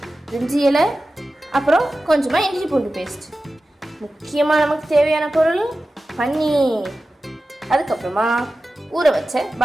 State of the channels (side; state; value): both; normal; correlation 0.94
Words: பிரிஞ்சி இலை, அப்புறம் கொஞ்சமாக இஞ்சி பூண்டு பேஸ்ட். முக்கியமாக நமக்கு தேவையான பொருள் பன்னீர். அதுக்கப்புறமா ஊற வச்ச